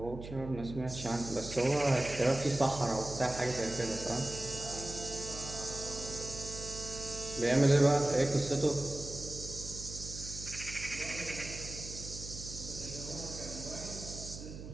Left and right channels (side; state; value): right; noise; hum, 11 dB below the sound